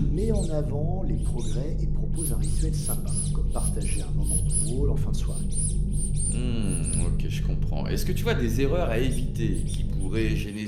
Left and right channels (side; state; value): both; identical; correlation 1.00